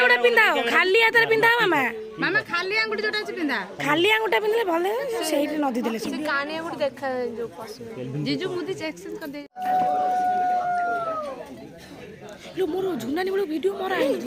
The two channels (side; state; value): both; identical; correlation 1.00